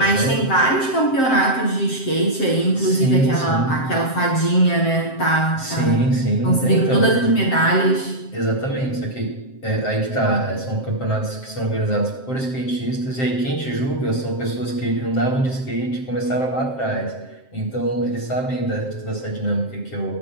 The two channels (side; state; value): right; late; 7.6 ms